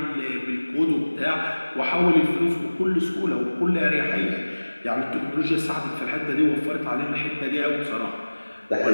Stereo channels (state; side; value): inverted; both; correlation -1.00